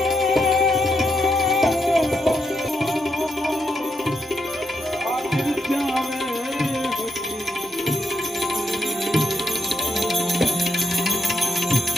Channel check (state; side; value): normal; both; correlation 0.81